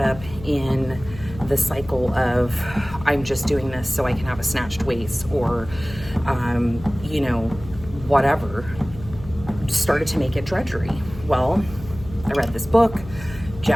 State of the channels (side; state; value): left; noise; hum, 15 dB below the sound